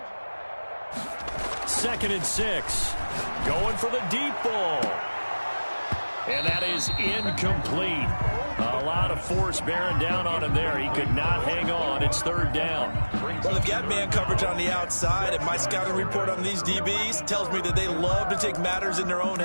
Second and 6. Going for the deep ball. And that is incomplete. A lot of force bearing down on him there. He could not hang on. It's third down. Well, they've got man coverage on the outside, and my scouting report on these DBs tells me that they love to take matters in their own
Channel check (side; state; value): both; inverted; correlation -1.00